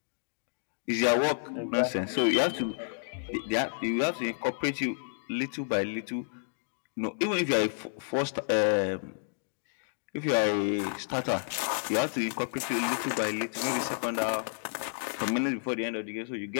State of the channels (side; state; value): right; silent; digital silence